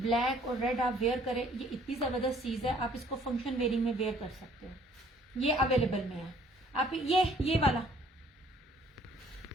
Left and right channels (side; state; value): both; normal; correlation 0.59